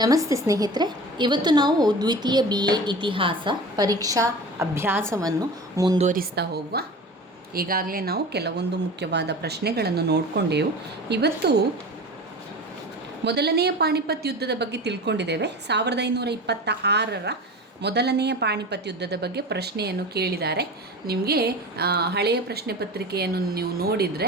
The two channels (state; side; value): normal; both; correlation 0.34